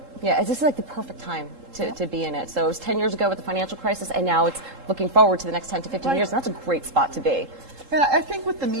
Yeah, this is like the perfect time to be in it. So it was 10 years ago with the financial crisis, and now it's looking forward to the next 10 to 15 years, and that's a great spot to be. And I think with the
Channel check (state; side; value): late; left; 3.7 ms